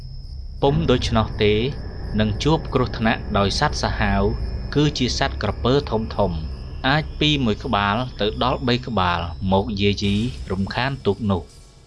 ពុំដូច្នោះទេនឹងជួបគ្រោះថ្នាក់ដោយសត្វសាហាវគឺជាសត្វក្រពើធំអាចពី1ក្បាលទៅដល់3ក្បាលមកយាយីរំខានទូកនោះ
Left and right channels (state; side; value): identical; both; correlation 1.00